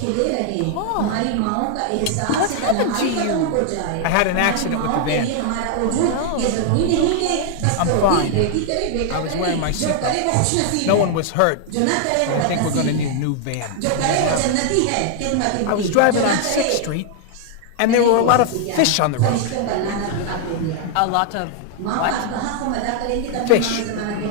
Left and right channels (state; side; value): different; both; correlation 0.00